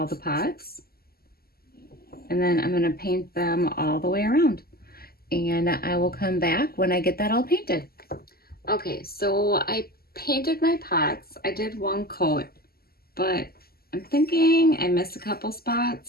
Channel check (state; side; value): late; right; 0.45 ms